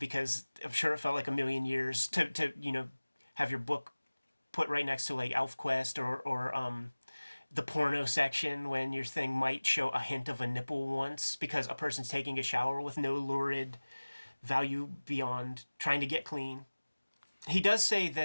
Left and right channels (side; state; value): both; inverted; correlation -1.00